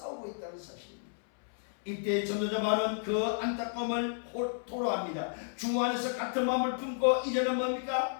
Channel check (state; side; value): silent; right; 56 dB below the other